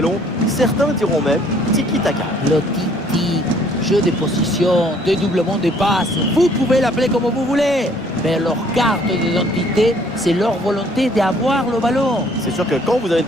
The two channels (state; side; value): normal; both; correlation 0.61